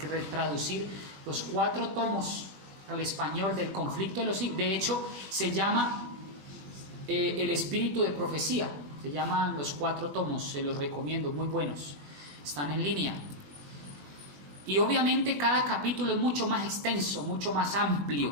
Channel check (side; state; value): left; late; 21 ms